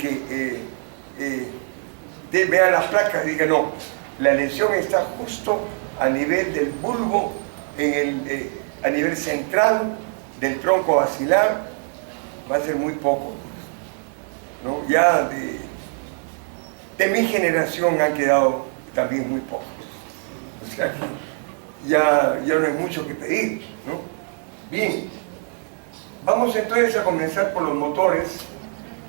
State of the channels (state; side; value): silent; left; 57 dB below the other